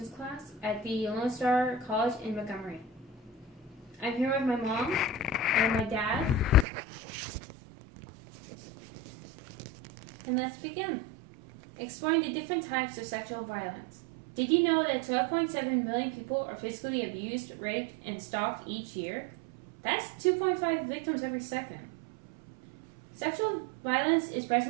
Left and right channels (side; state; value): left; drops out; at 6.7 s